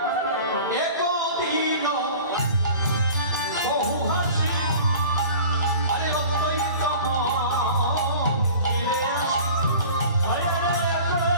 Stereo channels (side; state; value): both; inverted; correlation -0.42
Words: একদিন বহু হাসি আরে অদ্বৈতম ফিরে আসি, আরে